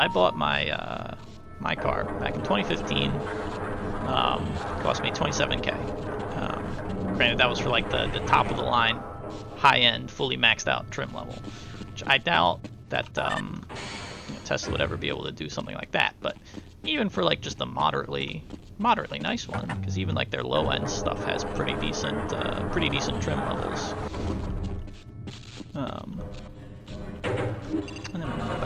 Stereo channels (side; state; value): both; identical; correlation 1.00